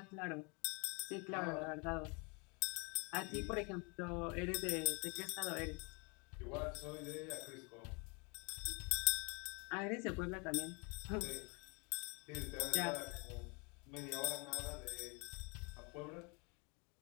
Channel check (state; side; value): quieter; right; 31.9 dB